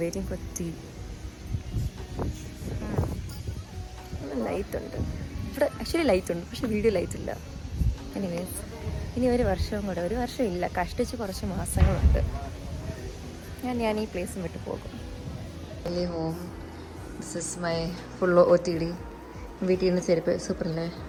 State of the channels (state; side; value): identical; both; correlation 1.00